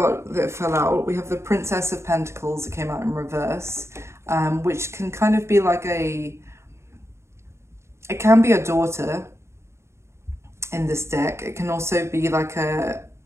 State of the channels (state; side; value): late; left; 0.13 ms